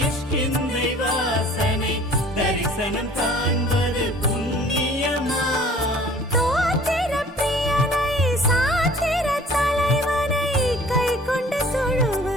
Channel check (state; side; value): normal; both; correlation 0.50